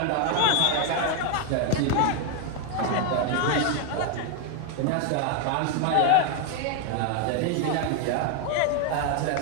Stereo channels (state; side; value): different; both; correlation 0.01